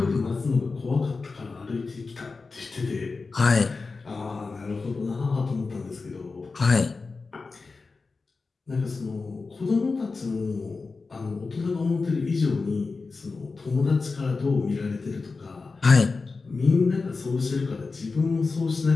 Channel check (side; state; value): right; quieter; 4.2 dB